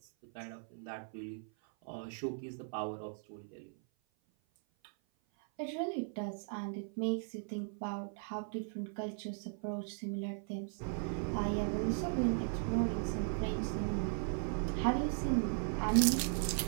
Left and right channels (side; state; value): left; silent; 53 dB below the other